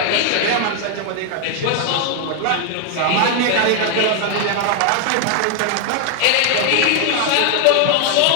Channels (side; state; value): both; different; correlation 0.00